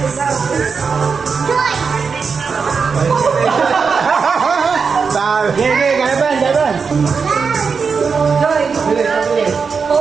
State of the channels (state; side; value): quieter; left; 5.4 dB